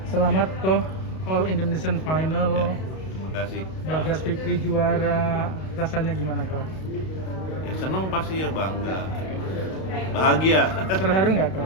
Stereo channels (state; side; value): late; right; 32 ms